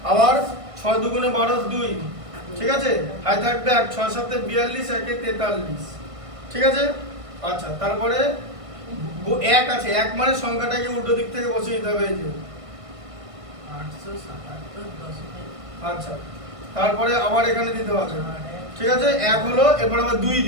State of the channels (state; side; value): late; left; 1.6 ms